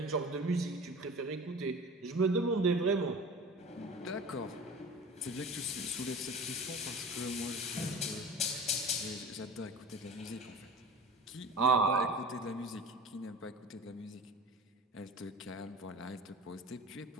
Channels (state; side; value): normal; both; correlation 0.37